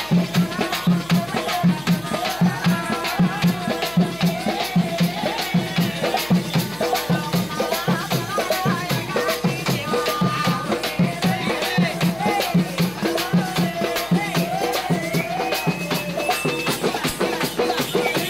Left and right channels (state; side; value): noise; left; hum, 21 dB below the sound